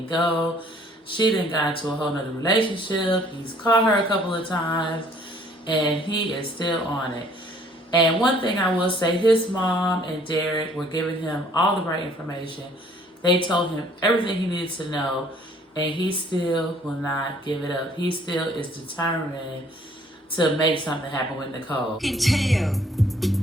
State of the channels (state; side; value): normal; both; correlation 0.59